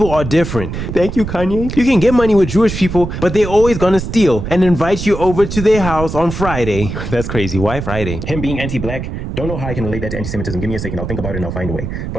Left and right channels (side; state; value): right; noise; rumble, 6 dB below the sound